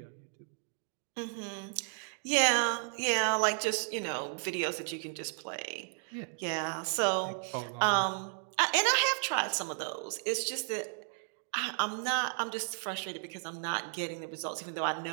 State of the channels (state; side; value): silent; left; digital silence